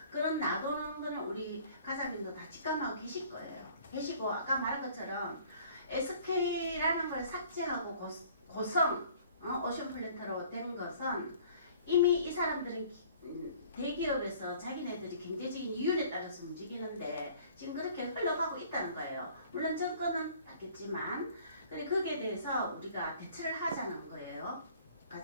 그런 놔두는 거는 우리 가장님도 다 직감하고 계실 거예요. 계시고 아까 말한 것처럼 SK라는 걸 삭제하고 고성 오션 플랜트로 된 것은 이미 이 사람들은 대기업에서 자기네들이 경제적인 이윤에 따라서 움직이는데 지금 그렇게 흘러가고 있다는 거예요. 물론 정권은 바뀌었지만 거기에 대해서 우리가 대처를 하자는 거예요.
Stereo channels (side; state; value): both; inverted; correlation -0.53